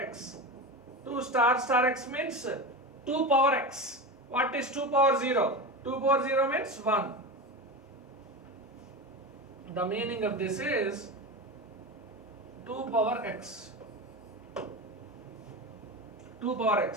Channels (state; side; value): normal; both; correlation 0.23